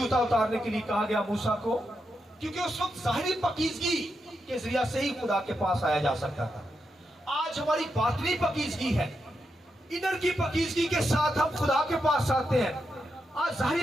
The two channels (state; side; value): normal; both; correlation 0.85